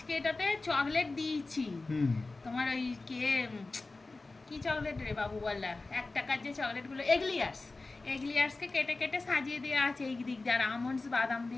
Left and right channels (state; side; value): quieter; right; 3.4 dB